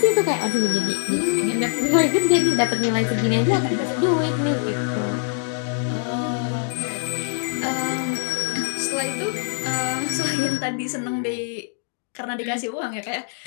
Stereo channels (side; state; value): right; silent; digital silence